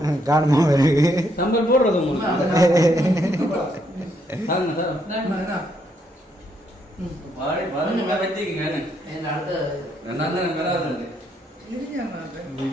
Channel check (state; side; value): normal; both; correlation 0.74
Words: காணுமா சம்பல் போடுறது